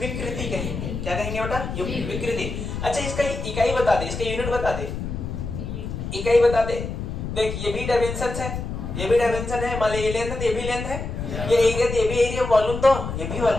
कहेंगे। क्या कहेंगे बेटा? विकृति। अच्छा इसका इकाई बता दे, इसका यूनिट बता दे, इकाई बता दे। देख ये भी डायमेंशन है, ये भी डायमेंशन है, मान ली ये लेंथ है, ये भी लेंथ है, ये एरिया, ये भी एरिया, वॉल्यूम तो ये भी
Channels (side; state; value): left; noise; rumble, 5 dB below the sound